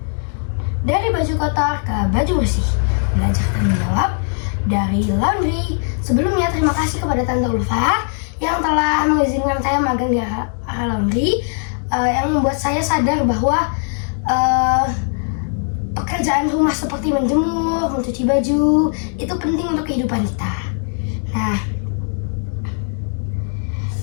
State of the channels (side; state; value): right; silent; 55 dB below the other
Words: dari baju kotor ke baju bersih, belajar tanggung jawab dari laundry. Sebelumnya terima kasih kepada Tante Ulfa yang telah mengizinkan saya magang di AHA Laundry, yang membuat saya sadar bahwa pekerjaan rumah seperti menjemur, mencuci baju itu penting untuk kehidupan kita. Nah,